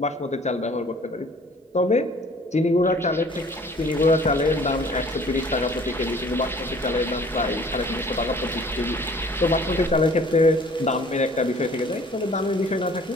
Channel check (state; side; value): normal; both; correlation 0.52